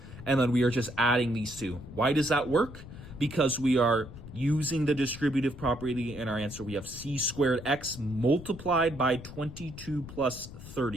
and then we are just adding these two. Why does that work? Because we are using the distributive property in our answer. We have c squared x multiplied by 22 plus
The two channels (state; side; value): noise; left; rumble, 14 dB below the sound